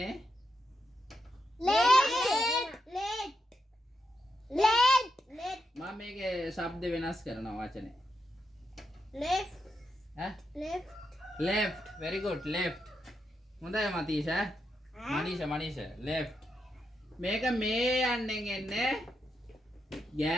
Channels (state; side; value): normal; both; correlation 0.85